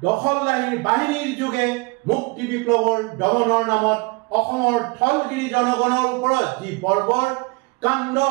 দখলদাৰী বাহিনীৰ যোগে মুক্তি বিপ্লৱৰ দমনৰ নামত অসমৰ থলগিৰি জনগণৰ ওপৰত যি বৰ্বৰ কাণ্ড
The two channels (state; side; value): quieter; left; 27.5 dB